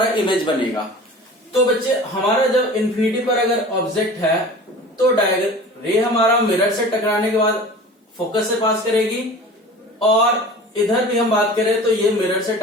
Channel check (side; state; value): both; normal; correlation 0.39